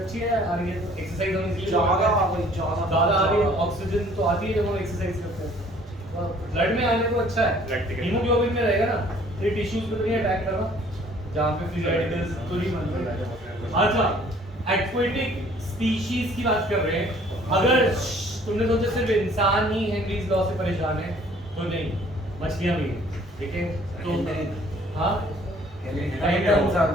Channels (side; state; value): both; normal; correlation 0.56